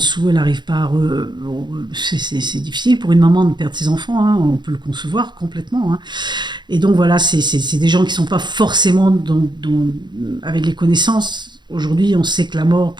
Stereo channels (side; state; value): left; late; 0.22 ms